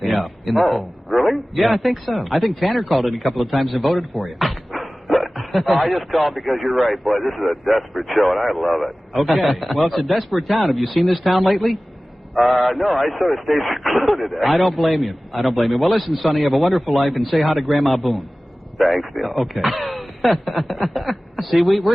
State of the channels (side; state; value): both; normal; correlation 0.97